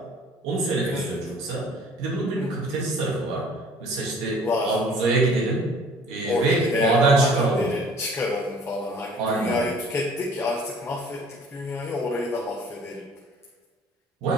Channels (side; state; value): both; normal; correlation 0.52